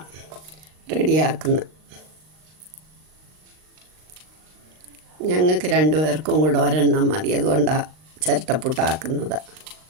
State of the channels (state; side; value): late; left; 39 ms